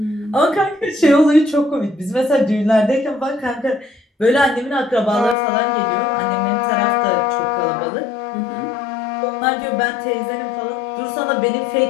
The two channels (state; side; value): drops out; right; at 5.4 s